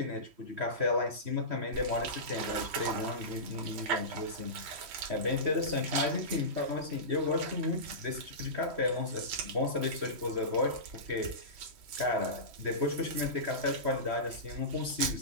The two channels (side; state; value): left; late; 3.1 ms